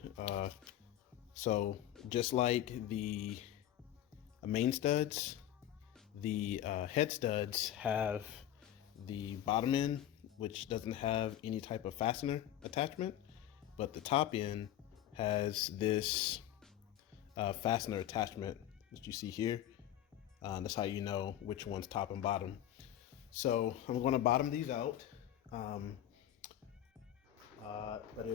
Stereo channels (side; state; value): right; quieter; 12.0 dB